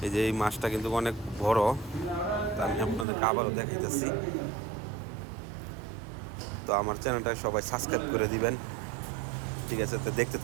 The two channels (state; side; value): drops out; left; at 3.1 s